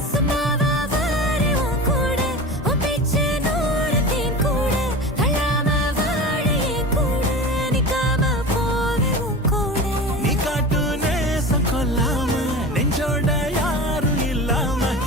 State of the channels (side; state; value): both; normal; correlation 0.31